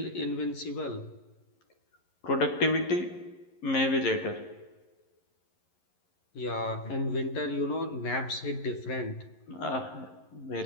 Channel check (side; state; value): right; late; 11 ms